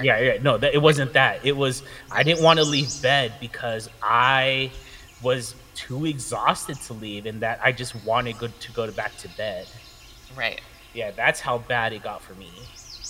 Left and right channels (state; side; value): identical; both; correlation 1.00